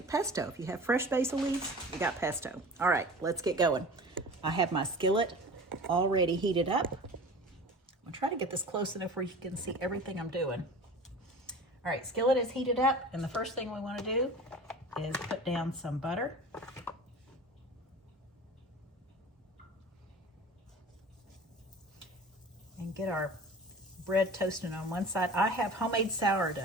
pesto. If you have fresh basil leaves, you got pesto. All right, let's get going. I have my skillet already heated up. I'm gonna try to get this close enough where you can see everything I'm doing. All right, skillet is heated up, and the first thing we want to do is put down some butter. And get our bread toasting on one side. I have homemade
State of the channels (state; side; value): normal; both; correlation 0.38